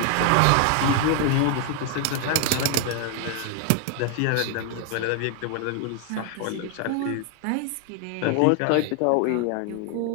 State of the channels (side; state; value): both; different; correlation 0.00